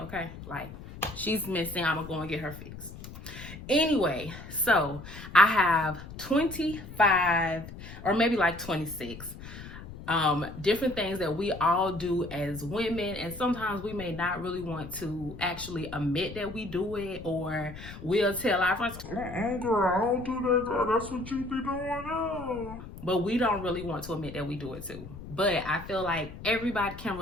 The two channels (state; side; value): noise; left; rumble, 13 dB below the sound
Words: okay? Like, she's missing, I'm gonna go and get her fixed. Anyway, so I have 25 or maybe like 26 different things that we all do as women, and sometimes we may not really want to actually admit that we do it, or we'll tell our friends, girl, I don't do that, girl. That's what you be doing now. But we don't really want to admit that we do it too. But I feel like everybody can